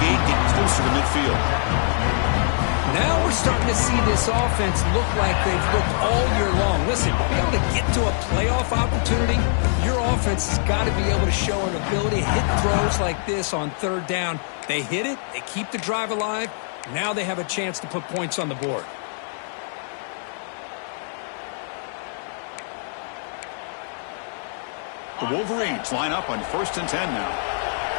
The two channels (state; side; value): silent; right; 59 dB below the other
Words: gain, getting closer to midfield. Now we're starting to see this offense look like they've looked all year long. Listen, to be able to get to a playoff opportunity, your offense has got to be able to show an ability to hit throws like this on 3rd down. They hit it, they keep the drive alive. Now they have a chance to put points on the board. The Wolverines line up on 1st and 10 now.